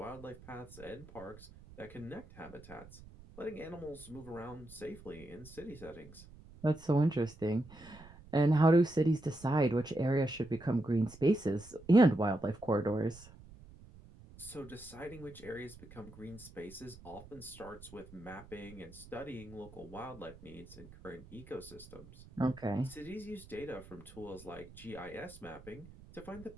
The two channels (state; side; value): noise; right; rumble, 19 dB below the sound